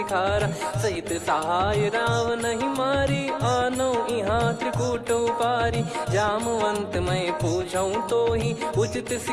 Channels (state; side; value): identical; both; correlation 1.00